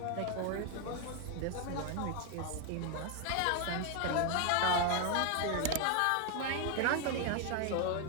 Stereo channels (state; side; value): different; both; correlation 0.01